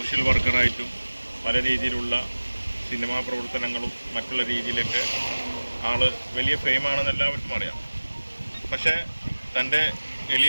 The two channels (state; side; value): inverted; both; correlation -1.00